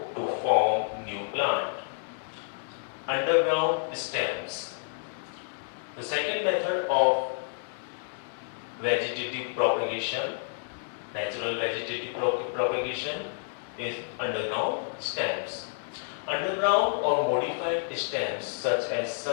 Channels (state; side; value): silent; right; digital silence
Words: to form new plant. Underground stems. The second method of vegetative propagation, natural vegetative propagation, is underground stems. Underground or modified stems such as